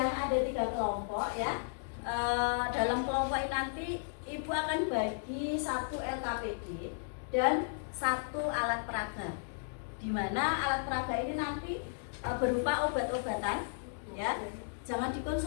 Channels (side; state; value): right; silent; digital silence